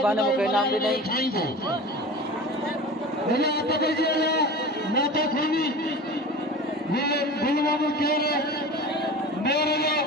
मूंखे इनाम ॾिनई।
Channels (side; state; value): both; normal; correlation 0.34